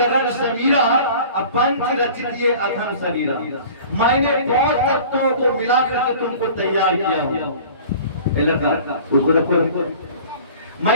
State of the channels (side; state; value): both; inverted; correlation -0.45